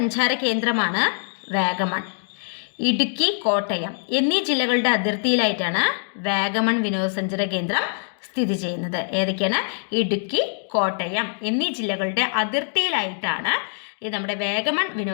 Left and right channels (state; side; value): silent; right; digital silence